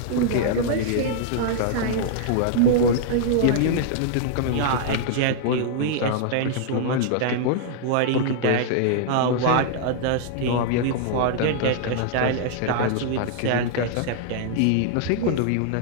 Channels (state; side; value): different; both; correlation -0.01